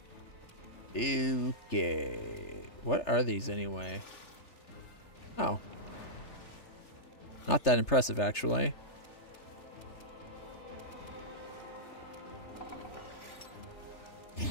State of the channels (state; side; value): late; right; 3.3 ms